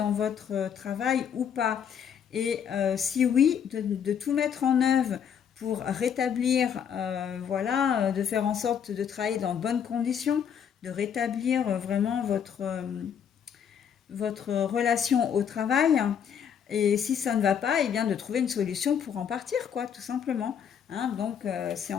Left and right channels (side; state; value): right; quieter; 8.1 dB